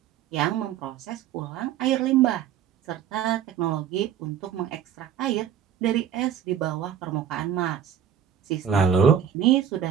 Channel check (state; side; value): quieter; left; 8.9 dB